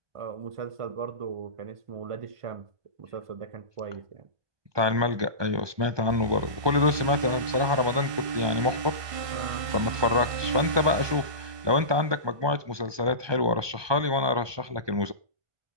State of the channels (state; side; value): late; left; 1.2 ms